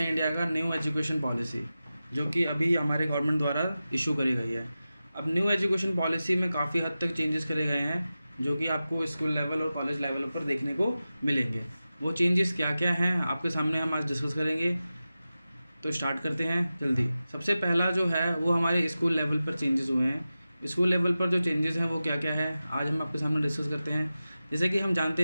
इंडिया का न्यू एजुकेशन पॉलिसी, जो कि अभी हमारे गवर्नमेंट द्वारा इशू करी गई है। अब न्यू एजुकेशन पॉलिसी में काफ़ी हद तक चेंजेस करे गए हैं, जो कि आपको स्कूल लेवल और कॉलेज लेवल पर देखने को मिलेंगे। वो चेंजेस क्या क्या हैं आपके सामने हम आज डिस्कस करेंगे। तो स्टार्ट करते हैं जल्दी। सबसे पहला जो है वो हमारे स्कूल लेवल पर चेंजेस हुए हैं। स्कूल लेवल पर जो चेंजेस हैं वो क्या क्या है आज हम आपके सामने डिस्कस करते हैं। जैसे कि हम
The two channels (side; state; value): both; inverted; correlation -0.94